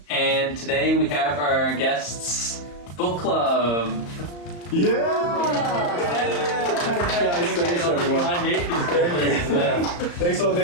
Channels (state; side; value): late; right; 34 ms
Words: and today we have our guests book club. Thanks everyone. I hate these characters. Thank